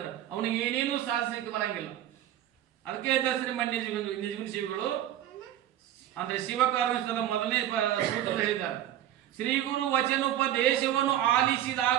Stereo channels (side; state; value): left; quieter; 12.1 dB